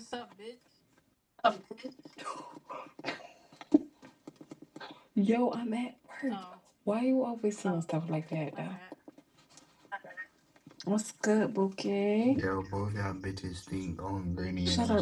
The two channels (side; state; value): both; identical; correlation 1.00